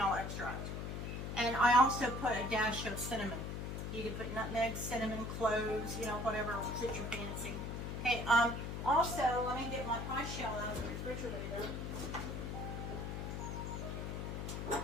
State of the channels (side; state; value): left; noise; hum, 4 dB below the sound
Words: extract. And I also put a dash of cinnamon. You can put nutmeg, cinnamon, cloves, whatever suits your fancy. Okay, also, let me get my pie shell out of the refrigerator.